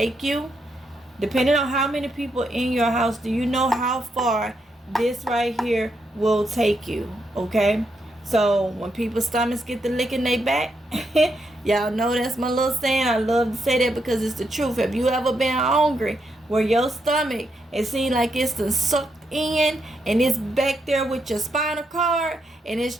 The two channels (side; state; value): both; normal; correlation 0.81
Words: you, depending on how many people in your house. Do you know how far this right here will take you? Okay, so when people's stomachs get to licking they back, y'all know that's my little saying. I love to say that because it's the truth. Have you ever been hungry where your stomach, it seems like it's done sucked in and it's back there with your spinal cord and it's